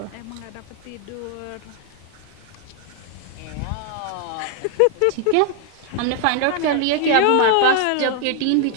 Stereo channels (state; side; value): different; both; correlation 0.00